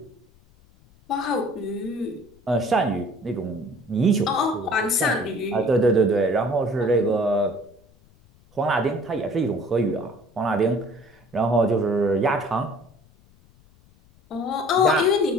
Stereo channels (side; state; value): left; noise; rumble, 29 dB below the sound